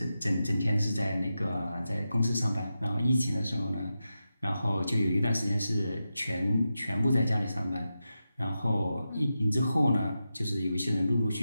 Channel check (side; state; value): both; inverted; correlation -0.90